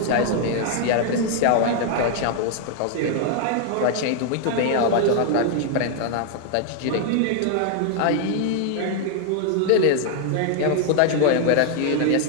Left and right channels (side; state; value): both; different; correlation 0.00